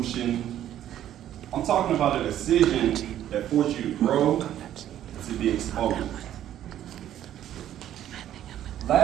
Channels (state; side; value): quieter; left; 11.6 dB